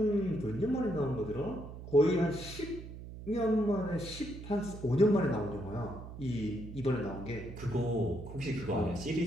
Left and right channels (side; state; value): right; noise; hum, 12 dB below the sound